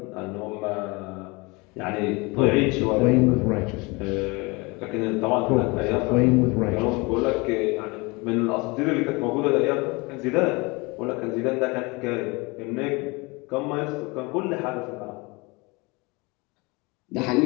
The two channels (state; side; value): quieter; right; 26.1 dB